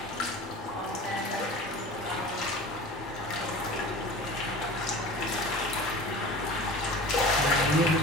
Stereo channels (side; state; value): both; normal; correlation 0.37